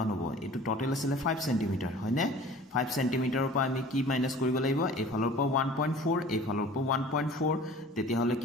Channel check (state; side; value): normal; both; correlation 0.45